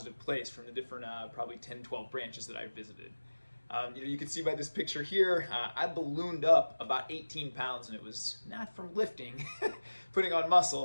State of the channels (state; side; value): inverted; both; correlation -1.00